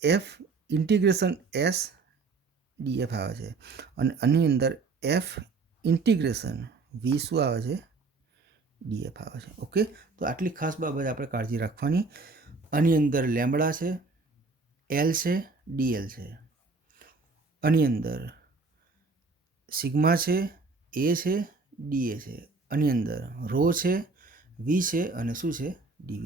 એફ ઇન્ટિગ્રેશન એસ ડીએફ આવે છે. અને આની અંદર એફ ઇન્ટિગ્રેશન વી શું આવે છે? ડીએફ આવે છે. ઓકે, તો આટલી ખાસ બાબત આપણે કાળજી રાખવાની. આની અંદર લેમ્બડા છે, એલ છે, ડીએલ છે. આની અંદર સિગ્મા છે, એ છે, ડીએ છે. આની અંદર રો છે, વી છે અને શું છે?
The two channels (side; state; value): left; quieter; 4.1 dB